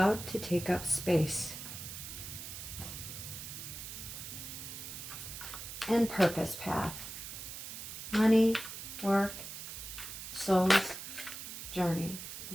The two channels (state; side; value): noise; right; hiss, 9 dB below the sound